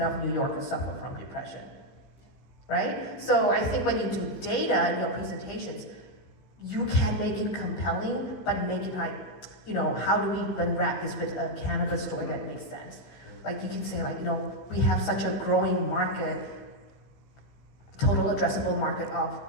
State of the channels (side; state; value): right; late; 16 ms